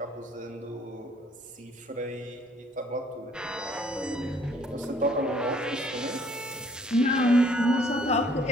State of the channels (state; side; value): normal; both; correlation 0.60